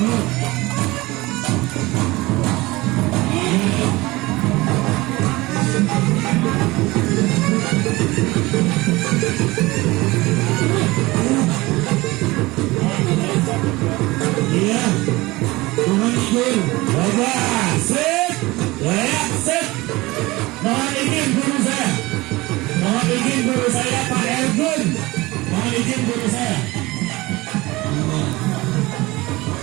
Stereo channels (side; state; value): left; quieter; 21.0 dB